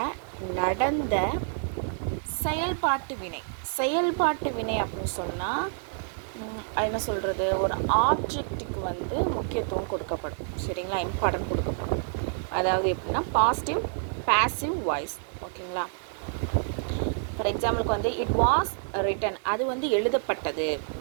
நடந்த செயல்பாட்டு வினை. செயல்பாட்டு வினை அப்படின்னு சொன்னால் என்ன சொல்கிறது, ஒரு ஆப்ஜெக்ட்டுக்கு முக்கியத்துவம் கொடுக்கப்படும். சரிங்களா? இம்பார்ட்டன்ட் கொடுக்கப்படும். அதாவது எப்படின்னா பாசிட்டிவ் பாசிவ் வாய்ஸ். ஓகேங்களா? ஃபார் எக்ஸாம்பிளுக்கு இட் வாஸ் ரிட்டன், அது எழுதப்பட்டது.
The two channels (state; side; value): silent; left; digital silence